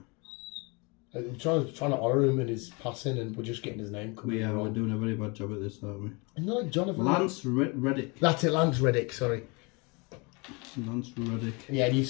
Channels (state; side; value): quieter; right; 29.4 dB